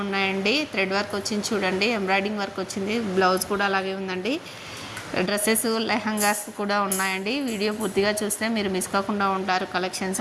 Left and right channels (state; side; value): identical; both; correlation 1.00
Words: ఉన్నాయండి. థ్రెడ్ వర్క్ వచ్చింది చూడండి, ఎంబ్రాయిడింగ్ వర్క్ వచ్చింది, బ్లౌజ్ కూడా అలాగే ఉందండి. డ్రెస్సెస్, లెహంగాస్ కూడా ఉన్నాయండి. వీడియో పూర్తిగా చూస్తే మీరు మిస్ కాకుండా ఉంటారు.